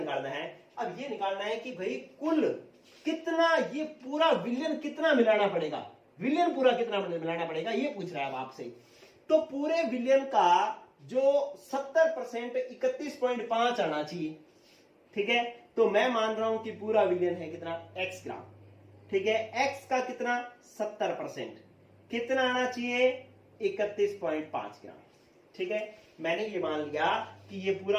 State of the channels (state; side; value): identical; both; correlation 1.00